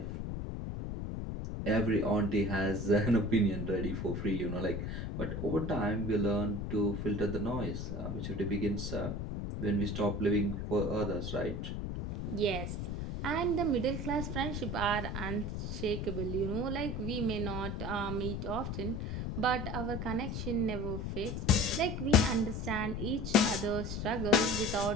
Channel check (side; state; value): left; noise; rumble, 4 dB below the sound